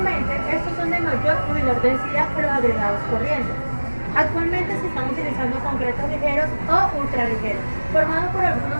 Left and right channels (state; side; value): inverted; both; correlation -1.00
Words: estos son de mayor o menor densidad que los agregados corrientes. Actualmente se están utilizando concretos ligeros o ultraligeros, formados por algunos